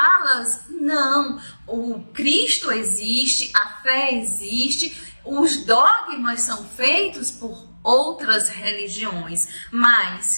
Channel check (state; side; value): inverted; both; correlation -1.00